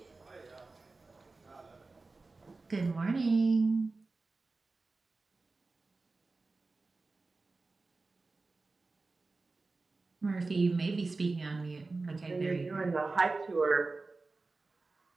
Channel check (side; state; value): left; quieter; 3.6 dB